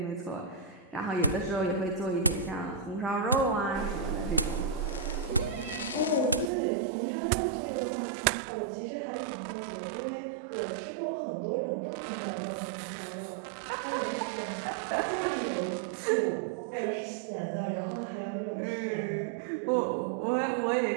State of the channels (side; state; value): left; drops out; at 6.5 s